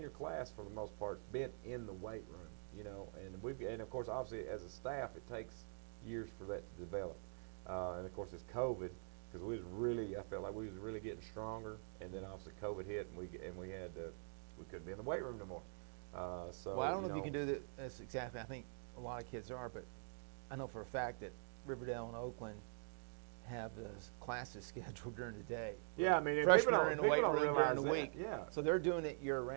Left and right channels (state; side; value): silent; left; digital silence